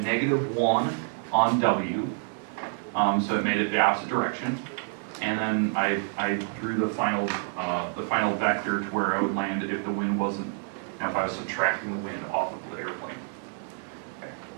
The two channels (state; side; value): silent; left; 59 dB below the other